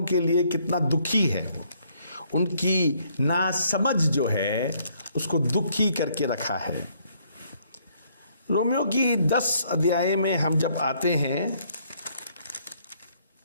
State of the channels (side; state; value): both; inverted; correlation -0.67